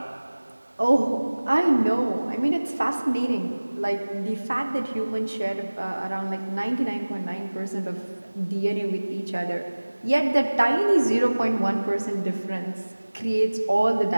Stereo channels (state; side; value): inverted; both; correlation -1.00